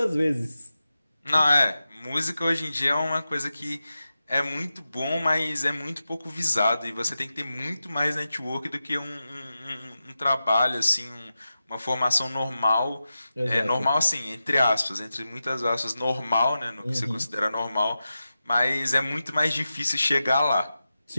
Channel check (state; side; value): inverted; both; correlation -0.92